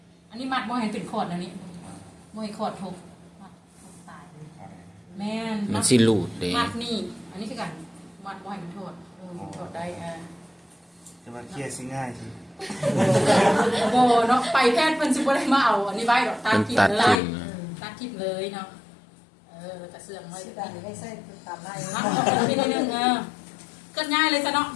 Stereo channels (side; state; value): right; drops out; at 17.2 s